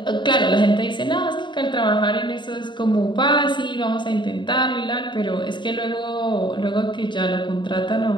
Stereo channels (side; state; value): right; late; 0.22 ms